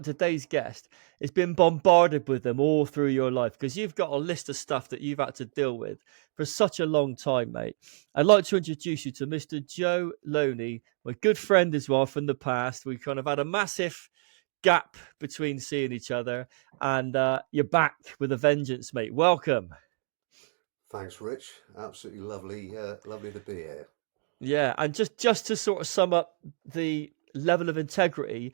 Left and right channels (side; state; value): left; silent; digital silence